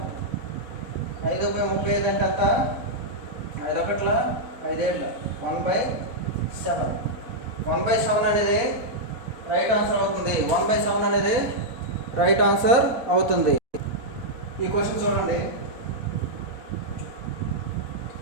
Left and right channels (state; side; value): late; left; 4.2 ms